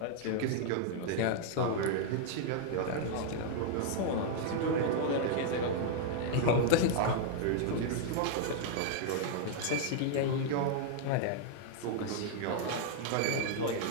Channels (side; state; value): both; different; correlation -0.01